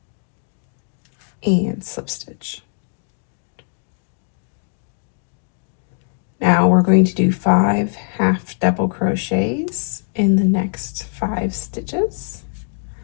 and slip stitch. Now we're going to do 5 half double crochets in the next 5 stitches.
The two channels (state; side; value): silent; right; 65 dB below the other